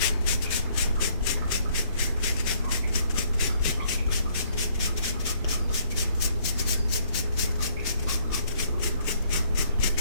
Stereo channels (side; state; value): both; inverted; correlation -0.66